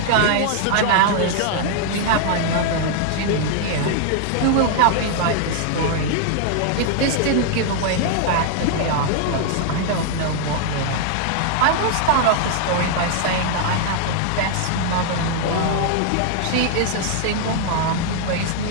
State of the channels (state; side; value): different; both; correlation 0.00